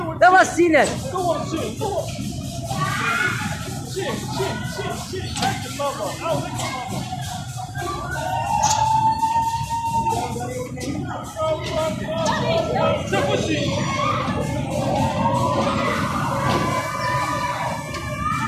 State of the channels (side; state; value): both; identical; correlation 1.00